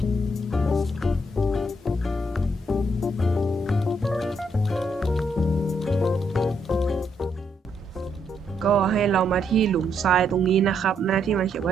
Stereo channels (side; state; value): both; normal; correlation 0.75